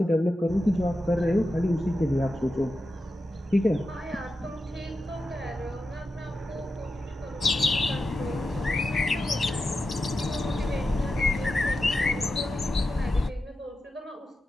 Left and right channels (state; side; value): normal; both; correlation 0.90